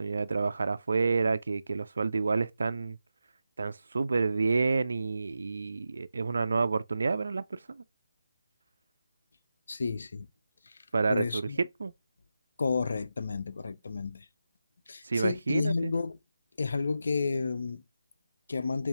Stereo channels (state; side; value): inverted; both; correlation -0.90